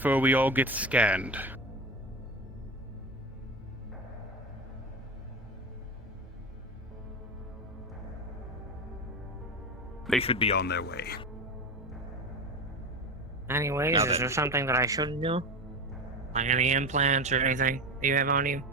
we all get scanned. They should be on their way. Anyways, is there something that I shouldn't do? Like any implants or anything that you have on you?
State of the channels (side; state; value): both; normal; correlation 0.23